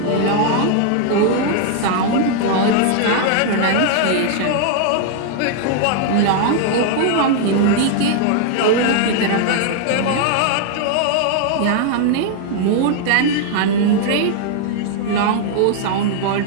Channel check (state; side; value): different; both; correlation 0.00